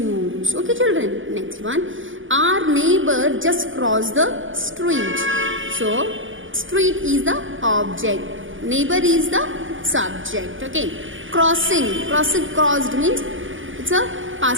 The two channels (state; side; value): late; left; 0.57 ms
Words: Okay children? Next one, our neighbor just crossed the street. So street is the object, neighbor is the subject. Okay. Crossing, crossed means it's a